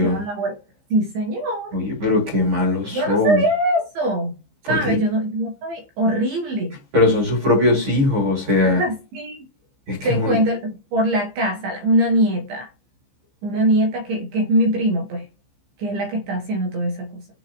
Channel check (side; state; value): left; late; 15 ms